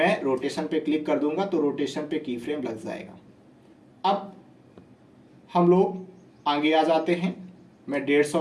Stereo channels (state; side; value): identical; both; correlation 1.00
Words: रोटेशन पे क्लिक कर दूंगा तो रोटेशन पे की फ्रेम लग जाएगा। अब हम लोग आगे आ जाते हैं, मैं